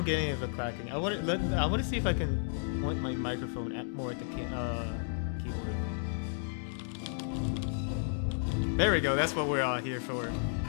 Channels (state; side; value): silent; right; digital silence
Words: get any of the clacking. I want to see if I can point my microphone more at the keyboard. There we go. That's what we're all here for.